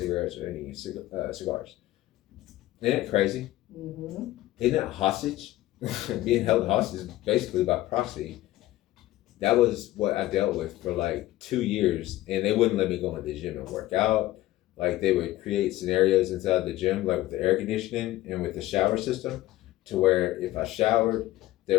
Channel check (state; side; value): quieter; right; 16.0 dB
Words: or any cigars. Isn't it crazy? Mm-hmm. Isn't that hostage? Being held hostage basically by proxy. That was what I dealt with for like 2 years, and they wouldn't let me go in the gym and work out. Like, they would create scenarios inside the gym, like with the air conditioning and with the shower system, to where if I showered, there